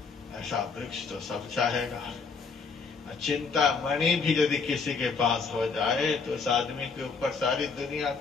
ऐसा वृक्ष तो सब चाहेगा। चिंतामणि भी यदि किसी के पास हो जाए तो उस आदमी के ऊपर सारी दुनिया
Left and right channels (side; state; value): right; quieter; 4.9 dB